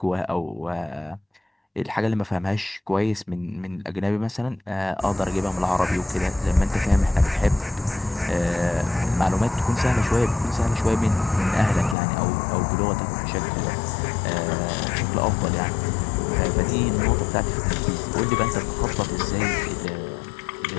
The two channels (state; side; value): drops out; right; at 12.0 s